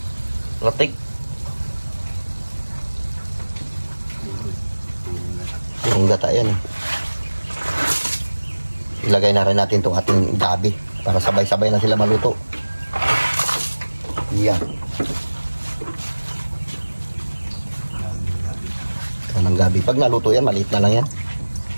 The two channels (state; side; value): inverted; both; correlation -1.00